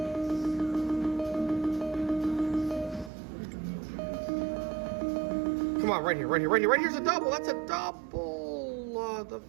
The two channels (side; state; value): left; drops out; at 3.1 s